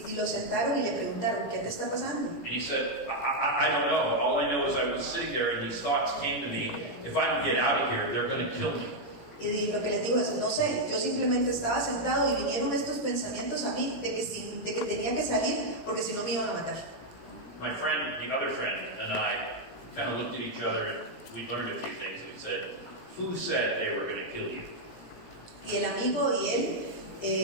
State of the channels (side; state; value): right; late; 17 ms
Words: lo sentaron y le preguntaron, ¿qué te está pasando? And he said, I don't know. All I know is I was sitting there and these thoughts came to me. If I don't get out of here, they're going to kill me. Y lo que les digo es, no sé, yo simplemente estaba sentado y vinieron estos pensamientos a mí de que tenía que salir porque si no me iban a matar. My friend, the other friend, and I kind of looked at each other and we learned a few things. We said, who said they were going to kill you? Y el amigo y él,